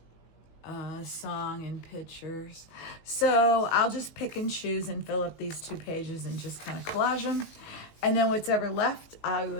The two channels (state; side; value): late; right; 19 ms